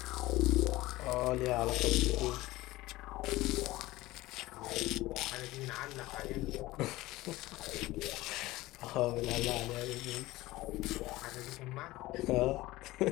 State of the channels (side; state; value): right; quieter; 18.5 dB